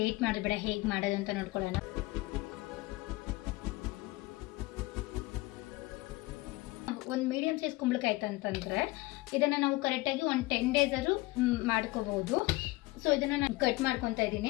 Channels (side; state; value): right; quieter; 20.8 dB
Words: ಮಾಡಬೇಡ, ಹೇಗೆ ಮಾಡೋದು ಅಂತ ನೋಡ್ಕೊಳ್ಳೋಣ. ಒಂದು ಮೀಡಿಯಂ ಸೈಜ್ ಕುಂಬಳಕಾಯಿ ಅಂತಂದರೆ ಇದನ್ನು ನಾವು ಕರೆಕ್ಟಾಗಿ ಒಂದು 10 days ಆದರೂ ಮಾಡ್ಕೋಬಹುದು. ಸೊ ಇದನ್ನು ನಾನು ಕಟ್ ಮಾಡ್ಕೊತಾ